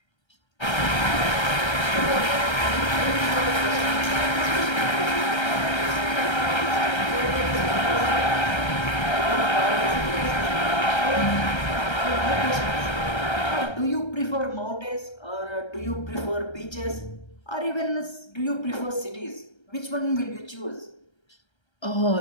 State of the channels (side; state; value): right; late; 1.3 ms